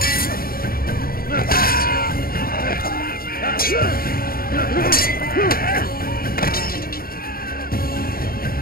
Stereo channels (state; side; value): late; right; 0.43 ms